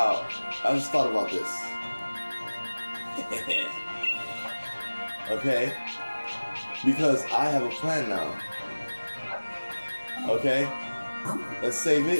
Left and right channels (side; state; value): both; inverted; correlation -1.00